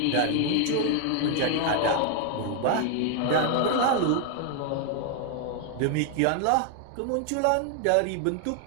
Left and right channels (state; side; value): different; both; correlation 0.00